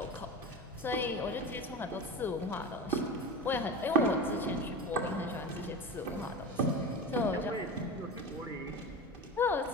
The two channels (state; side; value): normal; both; correlation 0.27